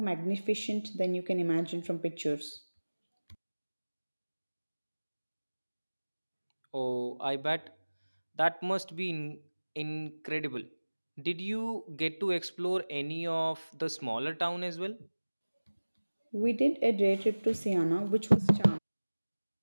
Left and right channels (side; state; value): both; inverted; correlation -1.00